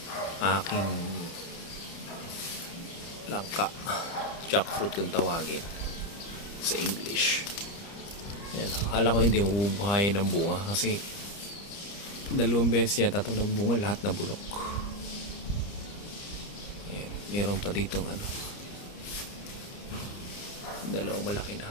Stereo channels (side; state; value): right; late; 30 ms